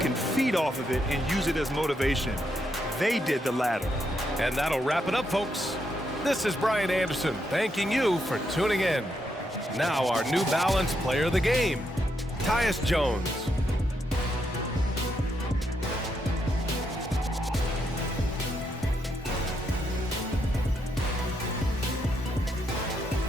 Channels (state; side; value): normal; both; correlation 0.79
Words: feed off of it and use it as motivation. They did the latter. And that'll wrap it up, folks. This is Brian Anderson thanking you for tuning in. Now our New Balance player of the game, Tyus Jones.